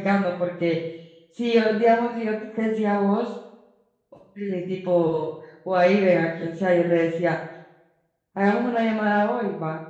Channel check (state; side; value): identical; both; correlation 1.00